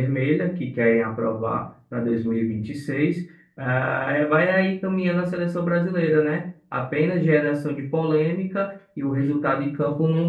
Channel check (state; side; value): identical; both; correlation 1.00